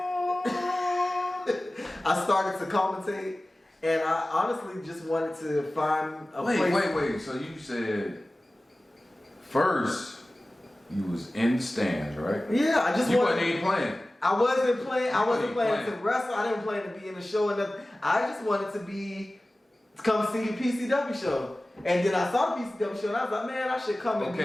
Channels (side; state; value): both; normal; correlation 0.97